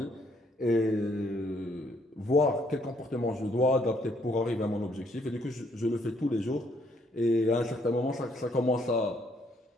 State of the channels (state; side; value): normal; both; correlation 0.68